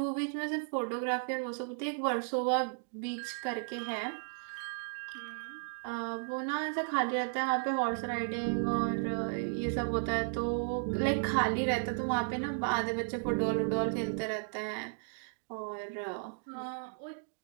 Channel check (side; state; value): left; silent; digital silence